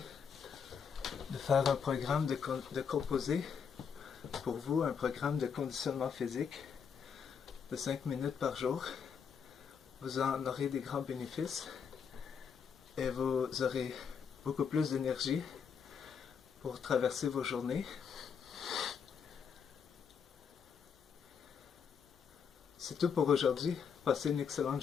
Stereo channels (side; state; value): right; quieter; 6.7 dB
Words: de faire un programme de composer, pour vous, un programme de conditionnement physique de 5 minutes par jour, vous en aurez des grands bénéfices et vous aurez beaucoup plus d'énergie pour traverser vos journées. C'est tout pour aujourd'hui. Passez une excellente